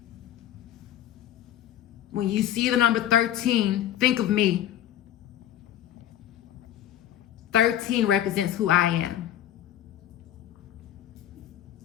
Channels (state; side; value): quieter; right; 11.5 dB